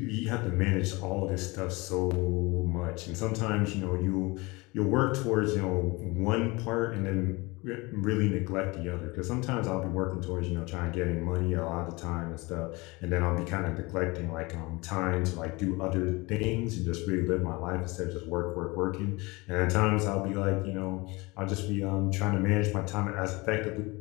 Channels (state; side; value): quieter; right; 24.5 dB